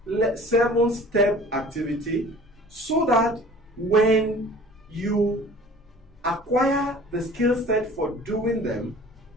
7-step activity so that when you acquire the skill set for doing them,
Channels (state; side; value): normal; both; correlation 0.46